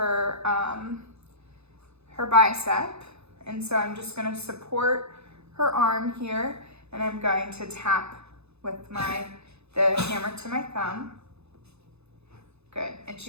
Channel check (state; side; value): late; left; 0.80 ms